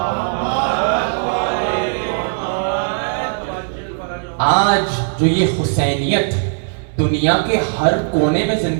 آج جو یہ حسینیت دنیا کے ہر کونے میں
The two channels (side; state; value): left; silent; 67 dB below the other